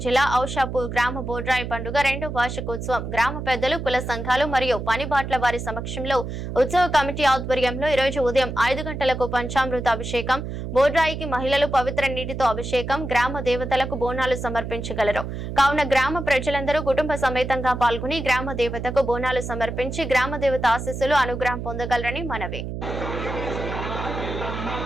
జిల్లా ఔషాపూర్ గ్రామ బోడ్రాయి పండుగ 2వ వార్షికోత్సవం గ్రామ పెద్దలు కుల సంఘాలు మరియు పనిబాట్ల వారి సమక్షంలో ఉత్సవ కమిటీ ఆధ్వర్యంలో ఈ రోజు ఉదయం 5 గంటలకు పంచామృత అభిషేకం బోడ్రాయికి మహిళలు పవిత్ర నీటితో అభిషేకం గ్రామ దేవతలకు బోనాలు సమర్పించగలరు కావున గ్రామ ప్రజలందరూ కుటుంబ సమేతంగా పాల్గొని గ్రామ దేవతకు బోనాలు సమర్పించి గ్రామ దేవత ఆశీస్సులు అనుగ్రహం పొందగలరని మనవి।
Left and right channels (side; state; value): right; noise; hum, 6 dB below the sound